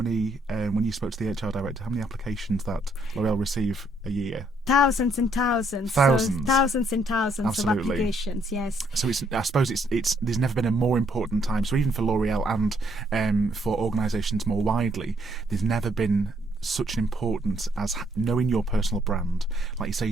when you spoke to the HR director, how many applications that L'Oreal receive a year? Thousands and thousands. Thousands. So thousands and thousands Absolutely. of applications, yes. So I suppose there's never been a more important time. So even for L'Oreal and for organisations more widely, there's never been such an importance as knowing your personal brand, like you say,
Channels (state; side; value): normal; both; correlation 0.70